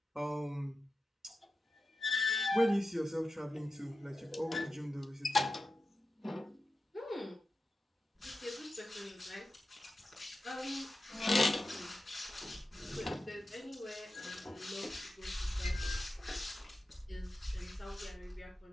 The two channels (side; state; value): both; normal; correlation 0.92